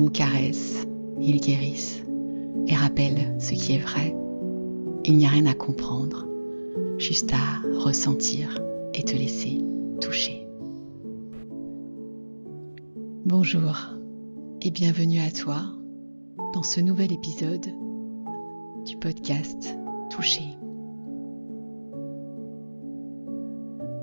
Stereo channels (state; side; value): inverted; both; correlation -1.00